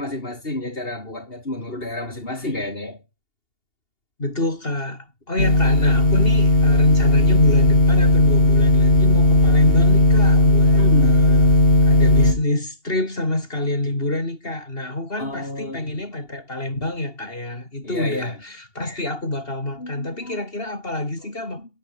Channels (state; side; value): late; right; 2.8 ms